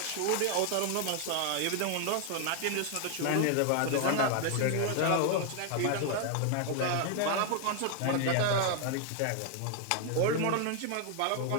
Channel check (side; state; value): both; different; correlation 0.00